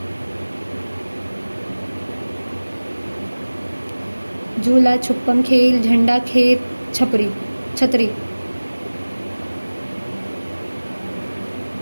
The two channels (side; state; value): both; inverted; correlation -1.00